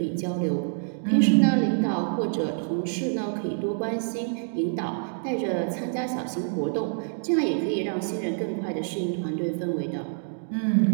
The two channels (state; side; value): silent; left; digital silence